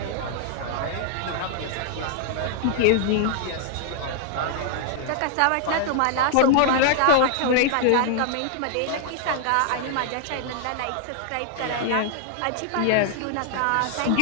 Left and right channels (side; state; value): both; different; correlation 0.00